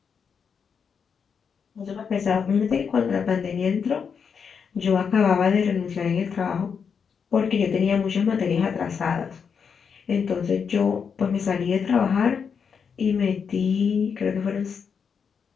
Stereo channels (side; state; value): right; quieter; 6.5 dB